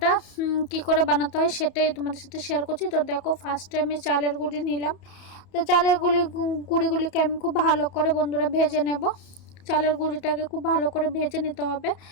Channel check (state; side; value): late; right; 31 ms